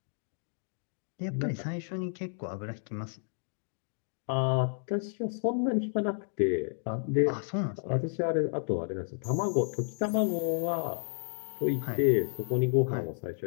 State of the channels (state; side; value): silent; right; digital silence